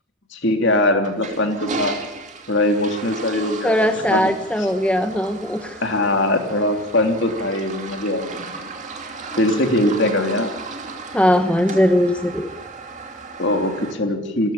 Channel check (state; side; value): normal; both; correlation 0.37